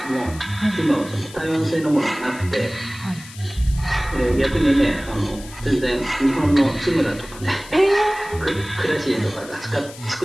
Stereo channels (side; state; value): left; noise; hiss, 17 dB below the sound